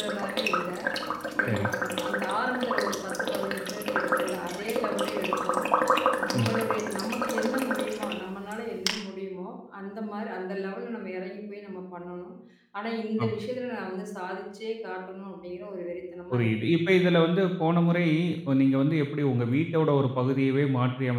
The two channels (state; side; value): identical; both; correlation 1.00